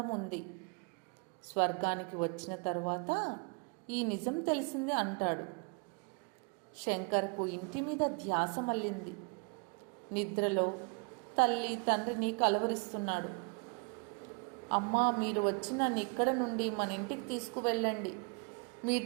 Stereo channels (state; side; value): quieter; left; 34.6 dB